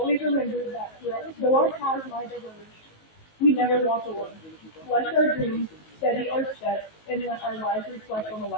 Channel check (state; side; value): late; right; 19 ms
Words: remember that though our paths might diverge, we never walk alone. Bless our dreams, steady our steps, and let our lives reflect on the